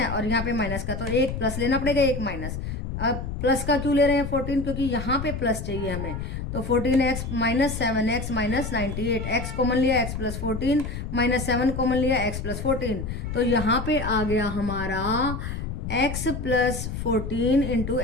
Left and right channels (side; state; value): left; noise; rumble, 5 dB below the sound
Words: और यहाँ पे माइनस का, तो एक प्लस लेना पड़ेगा एक माइनस। अब प्लस का क्यों ले रहे हैं 14, क्योंकि यहाँ पे प्लस चाहिए हमें, तो 14x minus 7x minus 98, x common लिया x प्लस 14 माइनस 7 कॉमन लिया x प्लस 14, तो यहाँ पे आ गया हमारा x plus 14 into